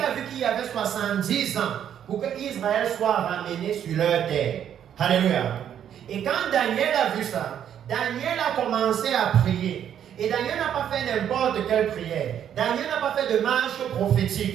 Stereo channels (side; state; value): left; quieter; 9.5 dB